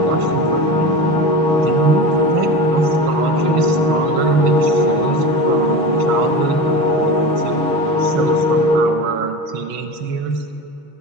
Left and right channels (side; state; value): left; late; 6.2 ms